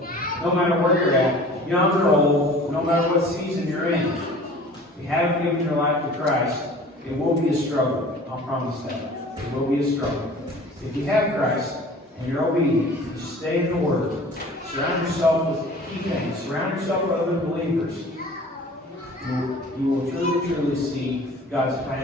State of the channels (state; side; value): normal; both; correlation 0.45